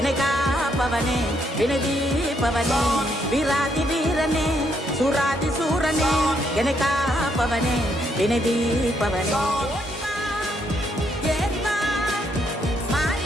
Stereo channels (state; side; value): normal; both; correlation 0.74